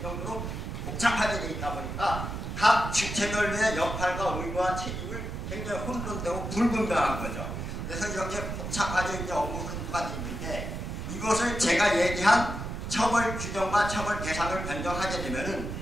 정도로 복잡하게 되어 있다 보니까 각 주체별의 역할과 의무와 책임을 굉장히 혼돈되고 불분명한 거죠. 그래서 이렇게 복잡하게 이제 업무 흐름가 되어 있는데 이것을 제가 얘기한 처벌 규정과 처벌 대상을 변경하게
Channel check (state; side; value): noise; right; rumble, 5 dB below the sound